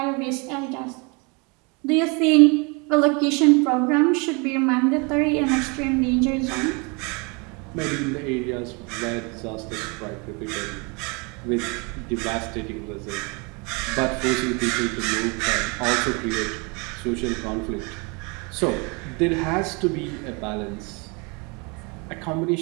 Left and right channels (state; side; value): quieter; left; 30.9 dB